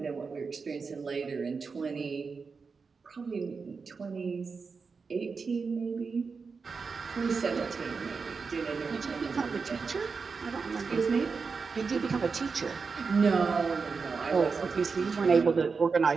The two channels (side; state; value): left; quieter; 5.0 dB